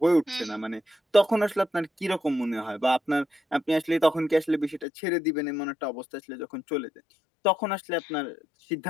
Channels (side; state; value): right; drops out; at 4.9 s